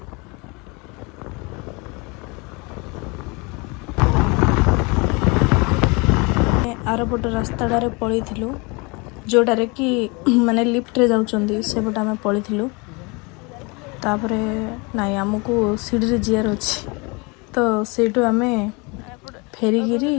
आरपट रास्ताटारे पलू जोटारे कि माने लिफ्ट रे जाउचंदी सेपट आम पलू तापर नाई आमको सीढ़ी जीआर अच्छी तो सेठू आम फेरिकी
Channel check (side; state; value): right; quieter; 28.5 dB